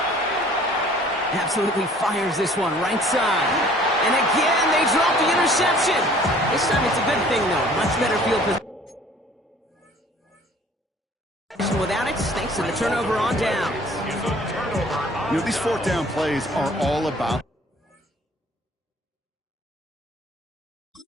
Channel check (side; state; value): both; normal; correlation 0.53